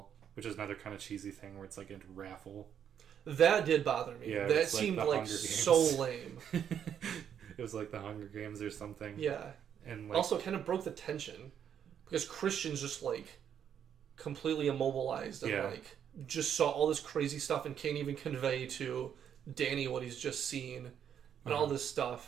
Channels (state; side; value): quieter; left; 8.8 dB